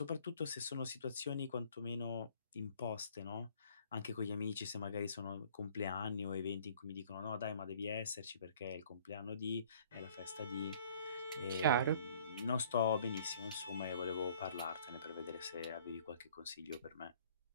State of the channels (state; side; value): inverted; both; correlation -0.56